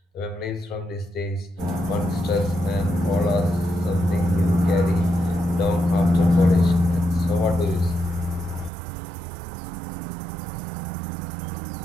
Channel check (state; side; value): drops out; left; at 8.7 s